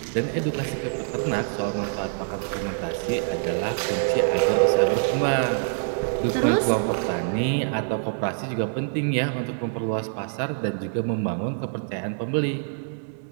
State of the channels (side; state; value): left; silent; digital silence